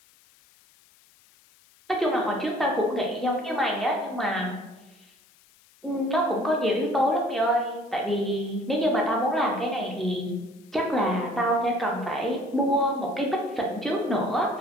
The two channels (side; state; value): left; noise; hiss, 30 dB below the sound